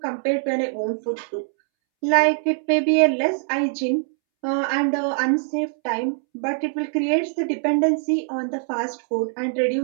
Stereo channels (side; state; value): left; silent; 64 dB below the other